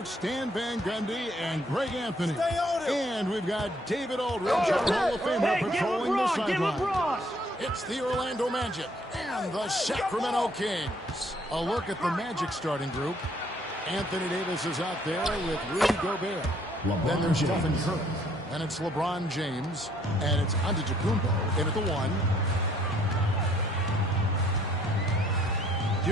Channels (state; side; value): normal; both; correlation 0.64